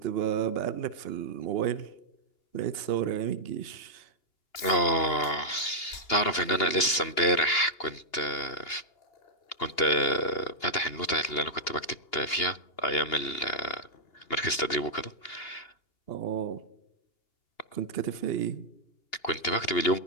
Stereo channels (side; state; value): right; late; 2.8 ms